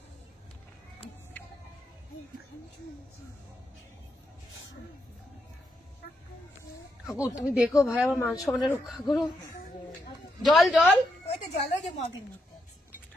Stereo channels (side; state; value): both; normal; correlation 0.81